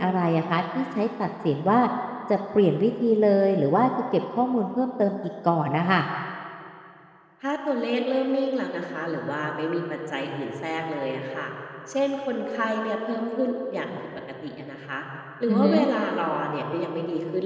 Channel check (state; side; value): identical; both; correlation 1.00